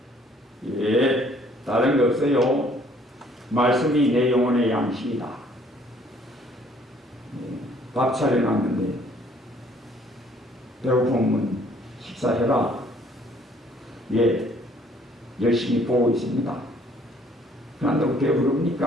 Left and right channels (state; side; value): normal; both; correlation 0.61